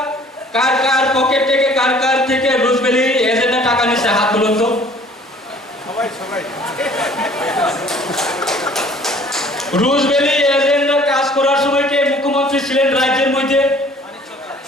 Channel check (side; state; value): both; normal; correlation 0.53